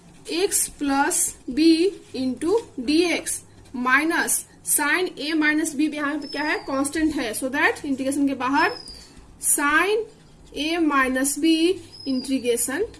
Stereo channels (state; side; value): identical; both; correlation 1.00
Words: x plus b into dx minus sine a minus b यहाँ पे क्या है कांस्टेंट है, सो दैट इंटीग्रेशन के बाहर sine a minus b integration